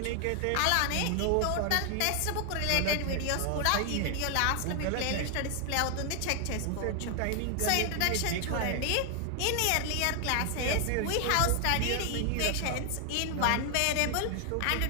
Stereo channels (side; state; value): both; different; correlation 0.00